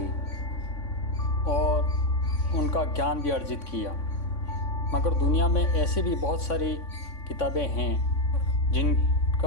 और उनका ज्ञान भी अर्जित किया, मगर दुनिया में ऐसे भी बहुत सारी किताबें हैं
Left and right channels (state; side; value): late; right; 3.6 ms